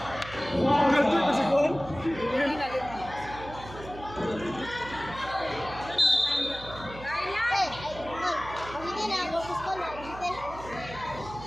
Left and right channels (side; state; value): right; noise; hum, 14 dB below the sound